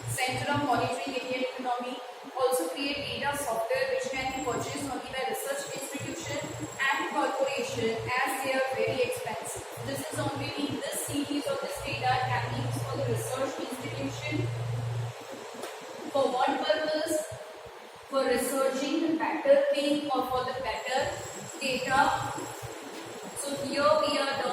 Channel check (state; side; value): identical; both; correlation 1.00